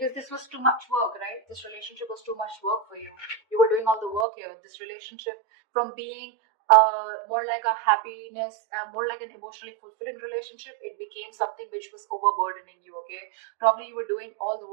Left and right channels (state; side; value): drops out; left; at 4.2 s